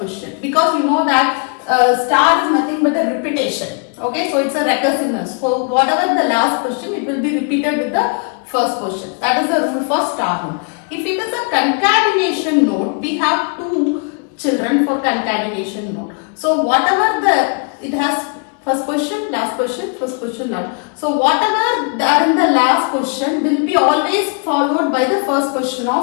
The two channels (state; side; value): quieter; right; 39.2 dB